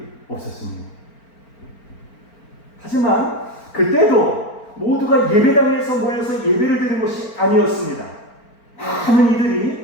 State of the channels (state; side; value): late; right; 4.4 ms